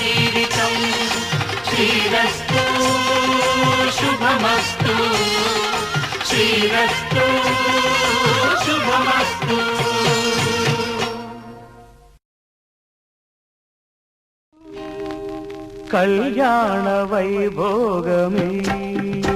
శ్రీరస్తు శుభమస్తు శ్రీరస్తు శుభమస్తు. కళ్యాణ వైభోగమే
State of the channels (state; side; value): identical; both; correlation 1.00